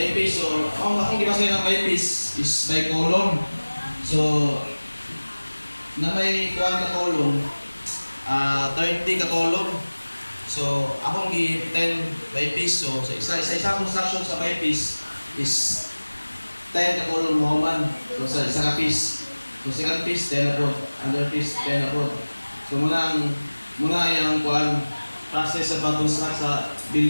piece, so, akong gibasa ng by piece is by column. So, na may kuwan ka column, 30 ka column. So, akong gi 10 by piece. So, sa isa construction sa by piece is 10 ka column mo man. So, sa isa ka piece. So, second piece, 10 na po. Under piece, 10 na po. So, muna yung kuwan, process sa pag-construct sa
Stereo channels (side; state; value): both; inverted; correlation -1.00